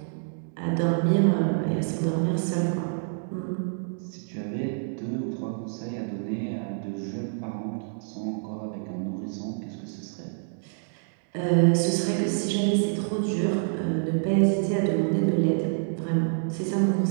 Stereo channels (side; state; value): left; silent; digital silence